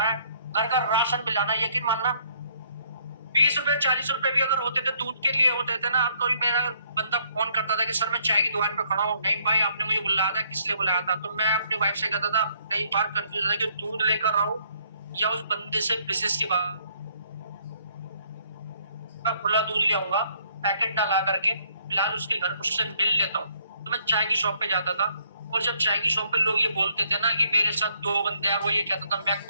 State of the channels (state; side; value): inverted; both; correlation -0.66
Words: घर का राशन भी लाना है। यकीन मानना 20 रुपए 40 रुपए भी अगर होते थे दूध के लिए होते थे ना, अब कभी मेरा बंदा फोन करता था कि सर मैं चाय की दुकान पे खड़ा हूँ, नहीं भाई आपने मुझे बुलाया था, किस लिए बुलाया था? तो मैं अपनी वाइफ से कहता था, कई बार कंफ्यूज था कि दूध लेकर आऊं या उस बंदे से बिजनेस की बात, खुला दूध ले आऊंगा पैकेट ना ला करके, फिलहाल उसके घर उससे मिल लेता हूँ। तो मैं चाय की शॉप पे जाता था, और जब चाय की शॉप पे लोग ये बोलते थे ना कि मेरे साथ 2 बंदे हैं, वो ये कहता था मैं